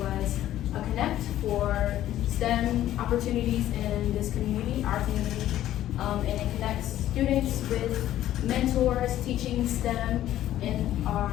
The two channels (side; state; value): right; quieter; 13.0 dB